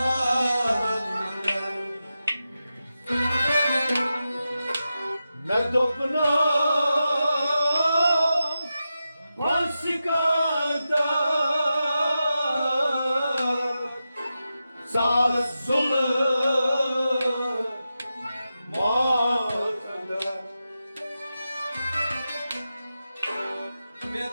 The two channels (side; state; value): both; inverted; correlation -0.91